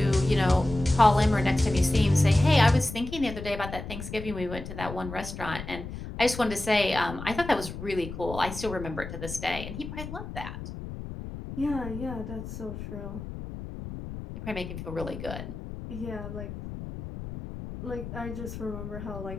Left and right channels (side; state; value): left; noise; rumble, 9 dB below the sound